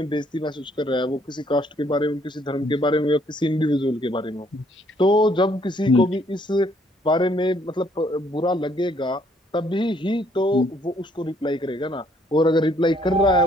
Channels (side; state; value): both; normal; correlation 0.66